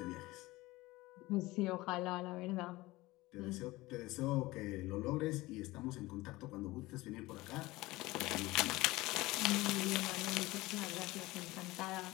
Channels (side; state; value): right; quieter; 20.0 dB